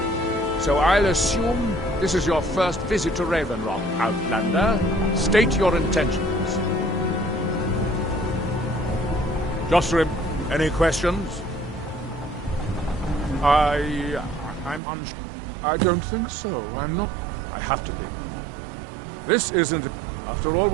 So I'll assume this is your first visit to Raven Rock, Outlander. State your intentions. Josrim, any questions? I'm unsure. I don't think so. I'm not. I have to be. This isn't. After all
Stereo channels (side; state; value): left; drops out; at 14.8 s